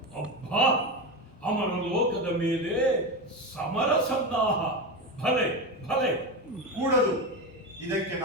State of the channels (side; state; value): both; normal; correlation 0.18